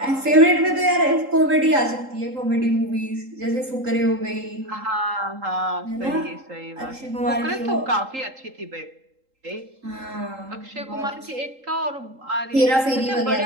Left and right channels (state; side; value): late; left; 3.8 ms